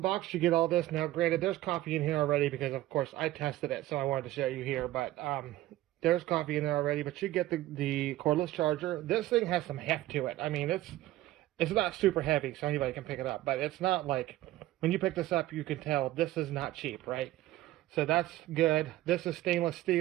you get all this. Now, granted, there's coffee in here already because, of course, I tested it, so I wanted to show you here. But there's coffee in there already, but you get the cordless charger. This thing has some heft to it. I mean, it's not super heavy, so anybody can pick it up. But it's not like, when you pick this up, you can tell this is not cheap, right? So that's good. This is stainless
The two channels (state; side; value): quieter; left; 15.8 dB